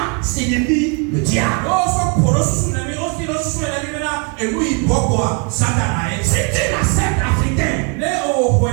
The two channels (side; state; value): left; quieter; 35.0 dB